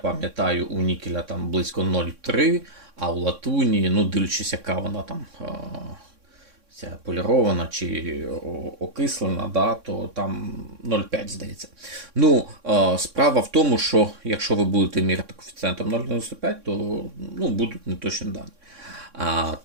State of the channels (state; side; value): late; left; 3.6 ms